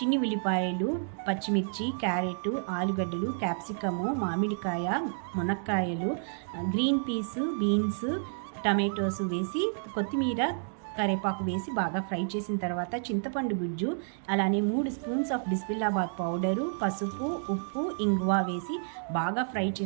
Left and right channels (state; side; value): silent; left; digital silence